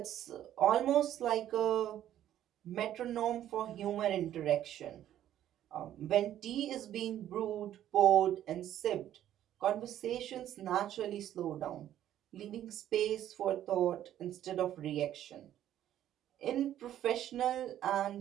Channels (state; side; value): quieter; left; 11.7 dB